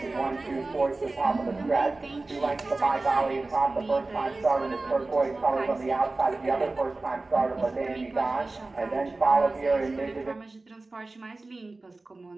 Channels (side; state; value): left; quieter; 3.3 dB